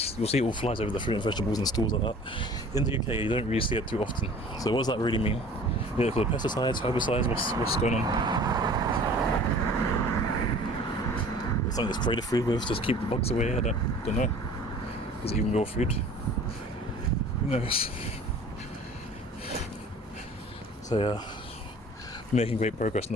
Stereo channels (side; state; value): both; normal; correlation 0.46